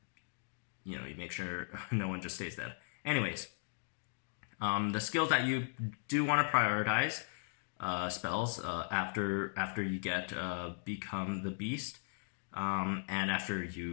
you make sure no one just stays dead. Anyways, the skills that you do want to prioritize spells after you get Become the Beast, and after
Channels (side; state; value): right; silent; digital silence